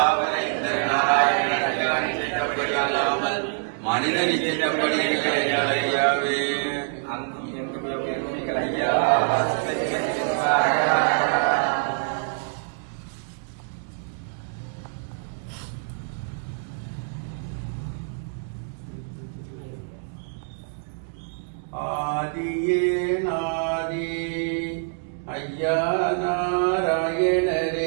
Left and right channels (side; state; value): left; silent; digital silence